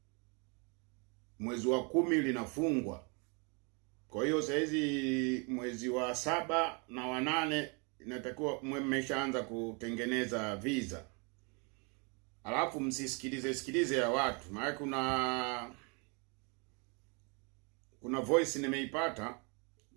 mwezi wa 10 linafungwa. Kwa hiyo saa hizi mwezi wa 7 na wa 8 inatakiwa mmeshaanza kutengeneza visa. Alafu msisikilize ya watu, maana kuna voice nimeipata,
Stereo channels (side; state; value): left; quieter; 33.4 dB